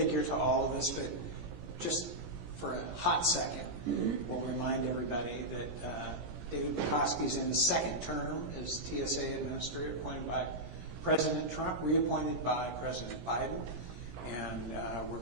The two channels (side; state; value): left; late; 17 ms